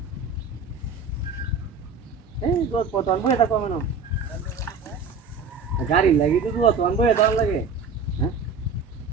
এই দোষ কত আনবো এটা কমে না গাড়ি লাগি তো দোষ আনবো এটা লাগে হ্যাঁ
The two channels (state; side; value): quieter; left; 4.7 dB